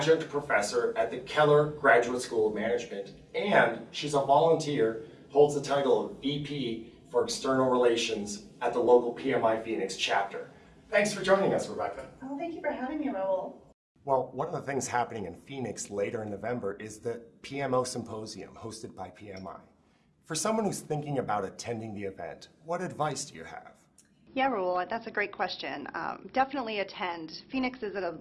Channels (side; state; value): both; identical; correlation 1.00